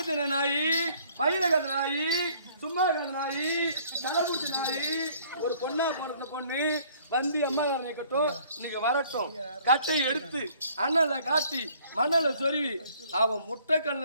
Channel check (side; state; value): both; inverted; correlation -0.58